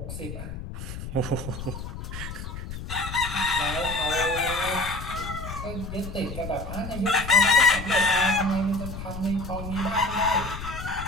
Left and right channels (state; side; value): noise; left; rumble, 8 dB below the sound